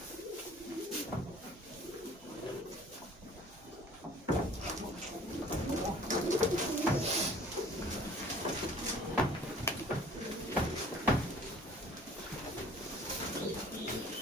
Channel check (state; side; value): normal; both; correlation 0.51